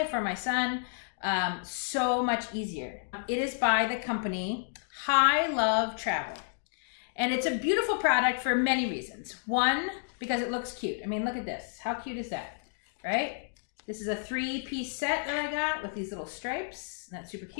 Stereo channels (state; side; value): silent; right; digital silence